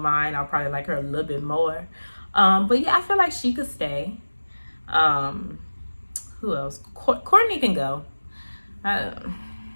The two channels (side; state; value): both; inverted; correlation -1.00